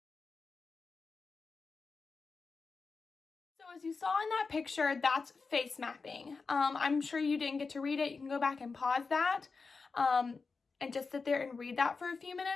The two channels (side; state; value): right; quieter; 4.5 dB